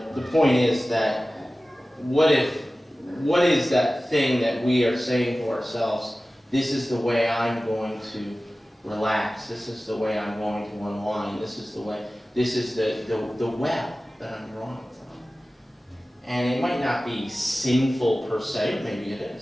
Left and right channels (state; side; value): normal; both; correlation 0.96